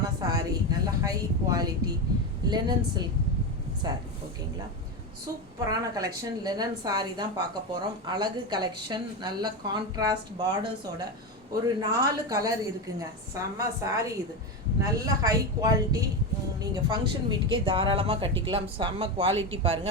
saree, நல்ல high quality linen silk saree. ஓகேங்களா, சூப்பரான கலெக்ஷன் லெனன் saree தான் பார்க்க போகிறோம். அழகு கலெக்ஷன், நல்ல கான்ட்ராஸ்ட் பார்டர்ஸோட ஒரு 4 கலர் இருக்குங்க. செம்ம saree இது, நல்ல ஹை குவாலிட்டி. நீங்கள் ஃபங்க்ஷன் வீட்டுக்கே தாராளமாக கட்டிக்கலாம். செம்ம குவாலிட்டி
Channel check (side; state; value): both; normal; correlation 0.15